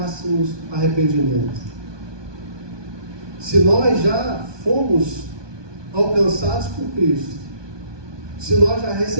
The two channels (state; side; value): late; left; 1.2 ms